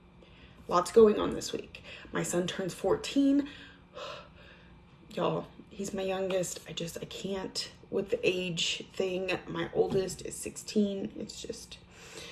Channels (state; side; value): identical; both; correlation 1.00